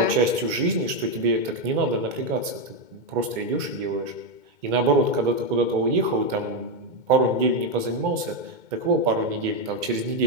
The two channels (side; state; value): left; late; 2.2 ms